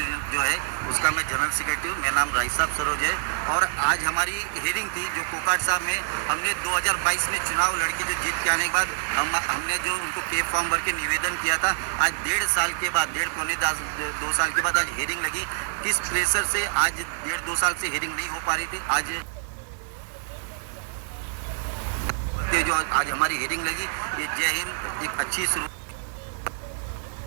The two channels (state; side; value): silent; left; digital silence